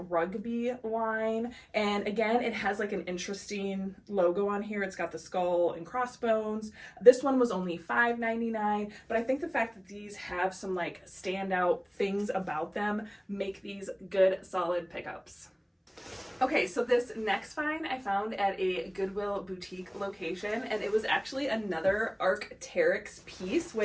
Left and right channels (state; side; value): identical; both; correlation 1.00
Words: Rugby line, and again, it has like an interesting logo on here. It's got the skull and crossbones. This one was only $5.99, but I think the fact that these have some like standout things about them make these good solid pickups. Okay, so this next find I found at a Goodwill boutique location, and it was actually another Arc'teryx piece,